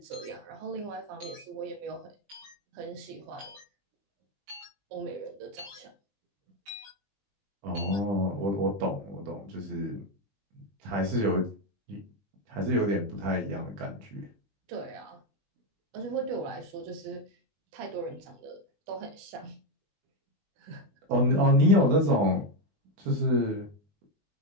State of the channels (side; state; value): left; late; 20 ms